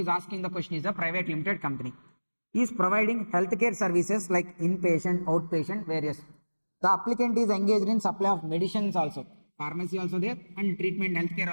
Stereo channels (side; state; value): both; inverted; correlation -1.00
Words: asking the question is a private limited company. He is providing healthcare services like inpatient, outpatient, various. The applicant is engaged in supply of medicines also. Pharmacy also there, and treatment healthcare